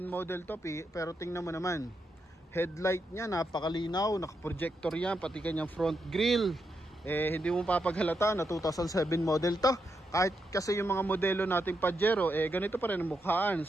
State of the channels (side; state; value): both; normal; correlation 0.83